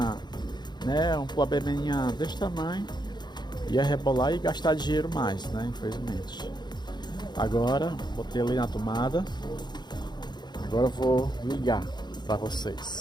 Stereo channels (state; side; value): late; right; 0.21 ms